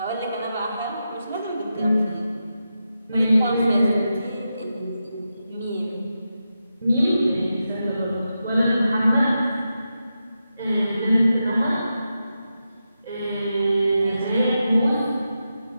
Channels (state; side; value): inverted; both; correlation -0.88